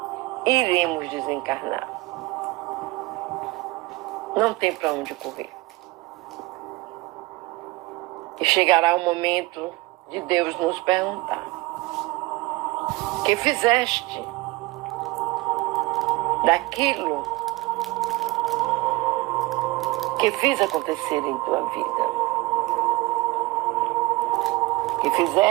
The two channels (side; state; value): left; quieter; 21.7 dB